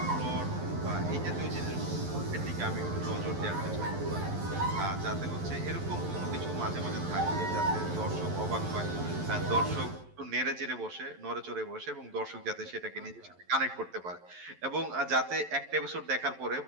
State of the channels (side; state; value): left; late; 11 ms